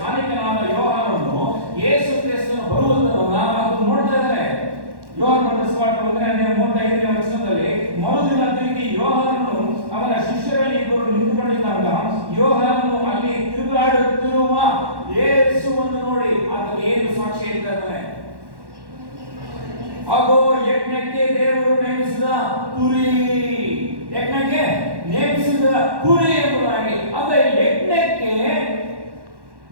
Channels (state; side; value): late; left; 1.1 ms